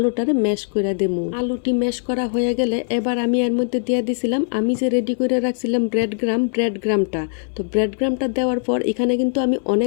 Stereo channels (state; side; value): silent; right; 65 dB below the other